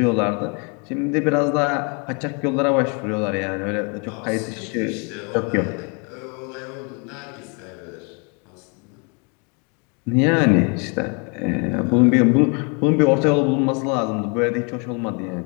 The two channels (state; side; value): quieter; right; 34.8 dB